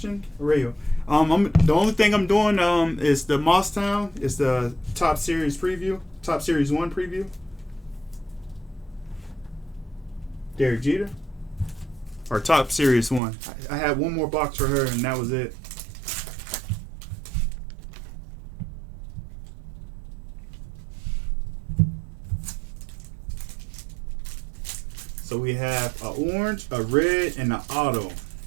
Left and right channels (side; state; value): left; drops out; at 13.2 s